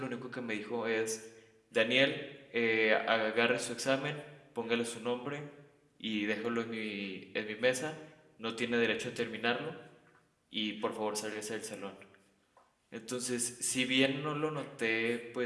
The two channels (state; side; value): identical; both; correlation 1.00